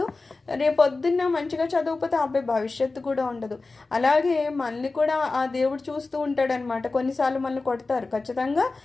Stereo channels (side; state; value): right; quieter; 3.6 dB